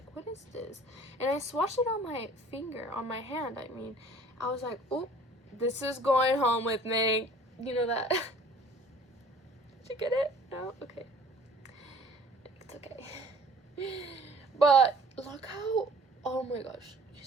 what is this? And I swatched it on my finger, on my hand. I mean, I was like, oh, this is going home with me. You know that? Did you get it? No? Okay. It's okay. But look how, oh my gosh, you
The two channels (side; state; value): both; normal; correlation 0.50